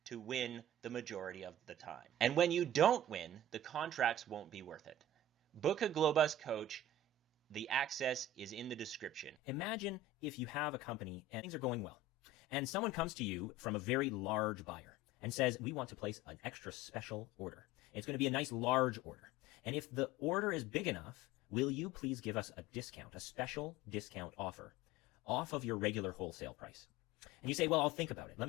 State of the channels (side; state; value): both; normal; correlation 0.36